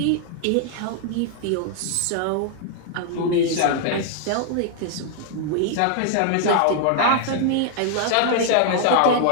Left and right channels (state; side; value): different; both; correlation 0.00